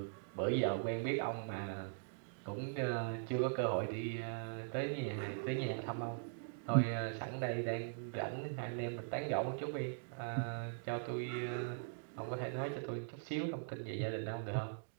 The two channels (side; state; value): left; silent; digital silence